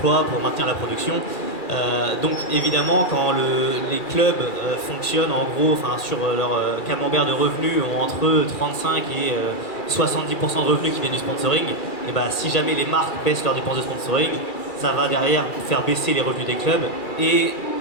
pour maintenir la production. Donc évidemment, quand les clubs fonctionnent en gros, sur leur camembert de revenus ont entre 35 et 70% de revenus qui viennent du sponsoring, et si jamais les marques baissent leurs dépenses de sponsoring, ça va derrière faire baisser les revenus des clubs et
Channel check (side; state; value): right; late; 2.3 ms